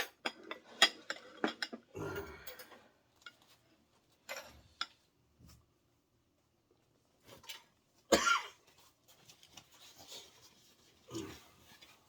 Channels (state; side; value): identical; both; correlation 1.00